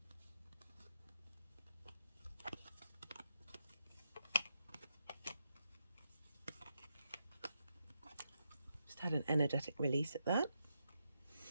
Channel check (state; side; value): inverted; both; correlation -0.82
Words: Had an energetic release at that.